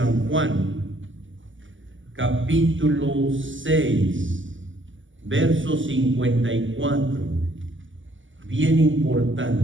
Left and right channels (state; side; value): late; left; 0.56 ms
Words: Juan, capítulo 6, verso 54, bien